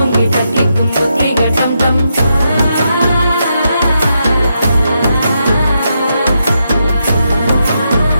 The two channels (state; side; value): inverted; both; correlation -0.83